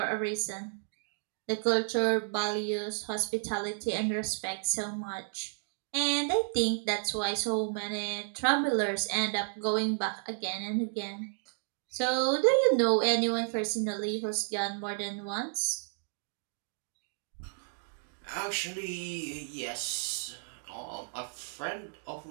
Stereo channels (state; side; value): silent; left; digital silence